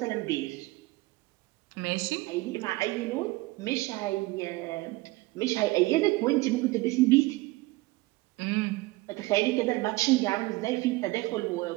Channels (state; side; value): quieter; left; 20.8 dB